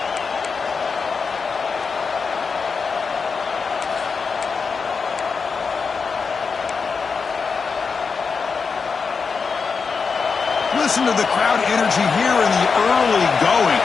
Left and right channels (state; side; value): quieter; right; 5.2 dB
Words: Listen to the crowd energy here in the early going.